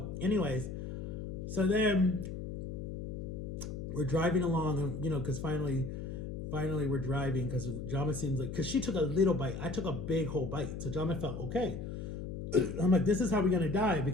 anyways, so then we're driving along and, you know, cause finally we're driving cause Jama seems like, cause she took a little bite. I took a big whole bite. So Jama felt okay. I'm like, this is how we're going to die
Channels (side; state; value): left; noise; hum, 6 dB below the sound